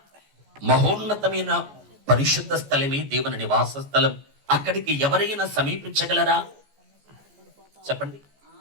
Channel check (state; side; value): late; left; 14 ms